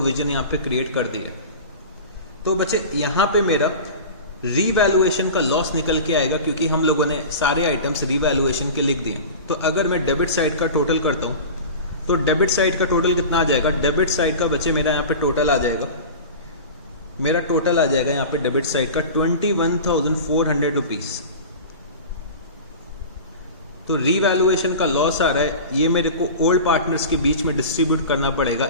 यहाँ पे क्रिएट कर दिया है। तो बच्चे यहाँ पे मेरा रीवैल्यूएशन का लॉस निकल के आएगा, क्योंकि हम लोगों ने सारे आइटम्स रीवैल्यूएशन के लिख दिए। तो अगर मैं डेबिट साइड का टोटल करता हूँ, तो डेबिट साइड का टोटल कितना आ जाएगा, डेबिट साइड का बच्चे मेरा यहाँ पे टोटल आ जाएगा, मेरा टोटल आ जाएगा यहाँ पे डेबिट साइड का 21,400 रुपीज़। तो रीवैल्यूएशन का लॉस आ रहा है, ये मेरे को ओल्ड पार्टनर्स के बीच में डिस्ट्रीब्यूट करना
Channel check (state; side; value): inverted; both; correlation -0.33